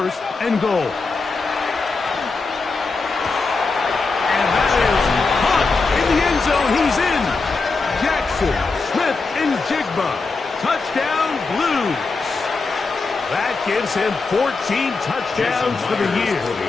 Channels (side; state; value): right; quieter; 4.1 dB